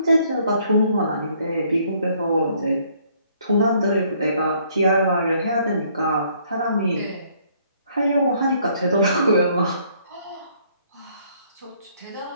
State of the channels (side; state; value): both; inverted; correlation -0.65